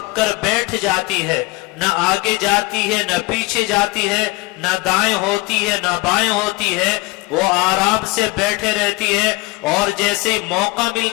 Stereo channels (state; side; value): quieter; right; 22.9 dB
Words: کر بیٹھ جاتی ہے، نہ آگے جاتی ہے نہ پیچھے جاتی ہے، نہ دائیں ہوتی ہے نہ بائیں ہوتی ہے، وہ آرام سے بیٹھے رہتی ہے، اور جیسے موقع